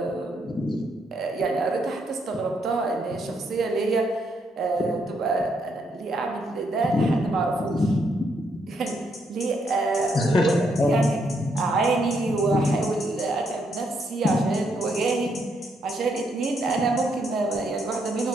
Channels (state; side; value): normal; both; correlation 0.76